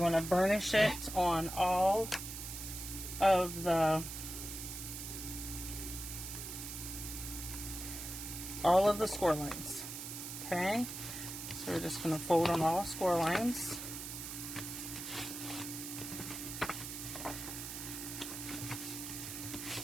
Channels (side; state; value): right; noise; hiss, 7 dB below the sound